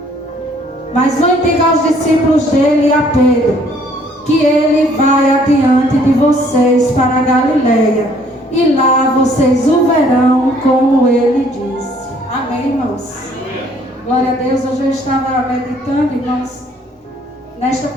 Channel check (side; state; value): both; normal; correlation 0.61